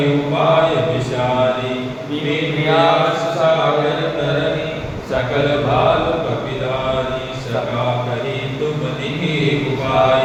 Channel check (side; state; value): both; identical; correlation 1.00